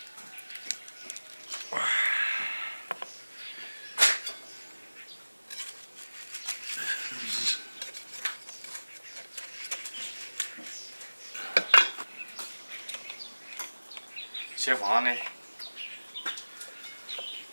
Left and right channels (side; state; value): both; inverted; correlation -1.00